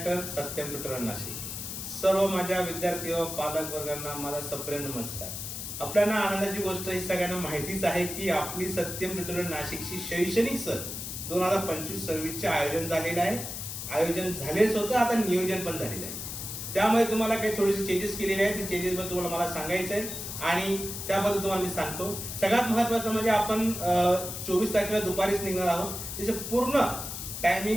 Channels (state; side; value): noise; left; hiss, 7 dB below the sound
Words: Satyam tutorial Nashik. सर्व माझ्या विद्यार्थी व पालक वर्गांना माझा सप्रेम नमस्कार. आपल्याला आनंदाची गोष्ट ही सगळ्यांना माहितीच आहे की आपली सत्यम ट्युटोरियल नाशिकची शैक्षणिक सहल 2025-26 चे आयोजन झालेलं आहे. आयोजन झालेच होतं, आता नियोजन पण झालेलं आहे. त्यामुळे तुम्हाला काही थोडेसे चेंजेस केलेले आहेत. ते चेंजेस बद्दल तुम्हाला मला सांगायचं आहे आणि त्याबद्दल तुम्हाला मी सांगतो. सगळ्यात महत्त्वाचं म्हणजे आपण 24 तारखेला दुपारीच निघणार आहोत. त्याचे पूर्ण